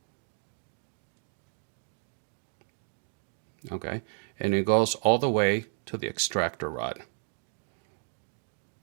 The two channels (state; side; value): silent; left; digital silence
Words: Okay, and it goes all the way to the extractor rod.